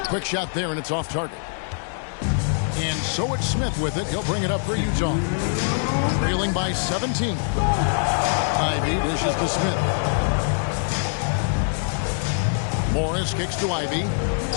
Quick shot there, and it's off target. And so it's Smith with it. He'll bring it up for Utah. Trailing by 17. Ivy dishes to Smith. Morris kicks to Ivy.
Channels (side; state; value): right; silent; digital silence